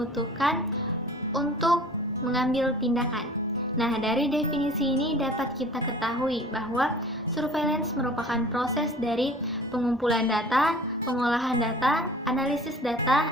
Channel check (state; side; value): normal; both; correlation 0.46